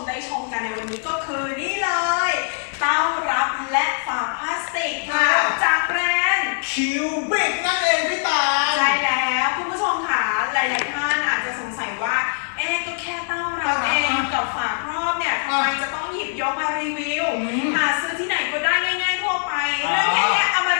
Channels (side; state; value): right; silent; digital silence